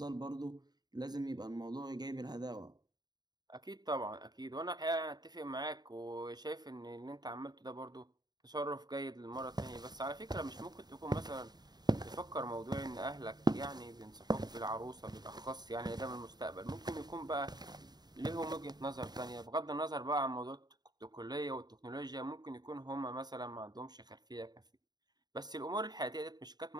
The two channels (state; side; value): late; left; 0.20 ms